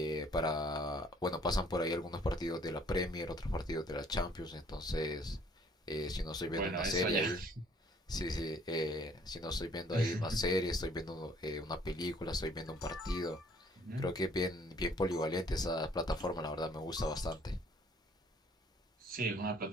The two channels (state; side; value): normal; both; correlation 0.60